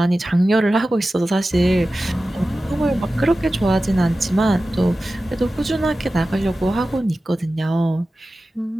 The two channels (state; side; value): normal; both; correlation 0.95